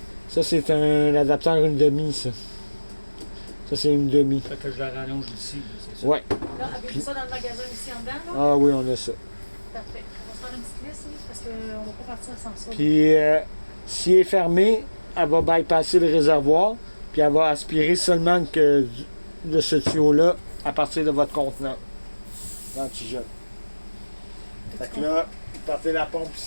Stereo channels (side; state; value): both; inverted; correlation -1.00